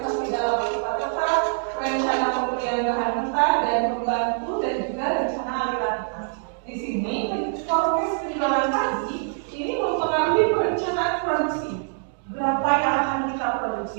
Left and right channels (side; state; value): left; silent; digital silence